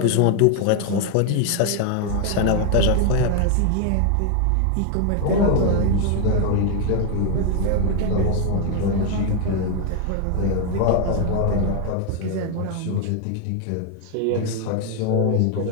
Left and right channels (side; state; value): both; different; correlation 0.01